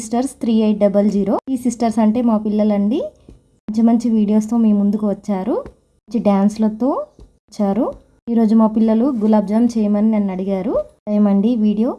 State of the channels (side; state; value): both; identical; correlation 1.00